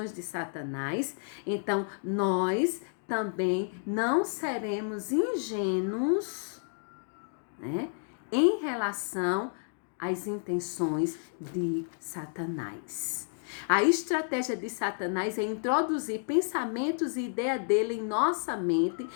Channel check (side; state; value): right; silent; 57 dB below the other